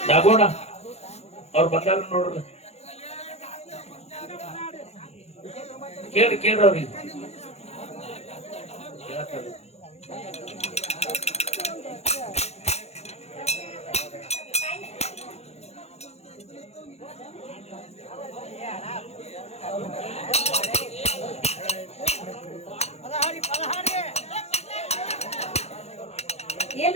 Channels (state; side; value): late; right; 0.31 ms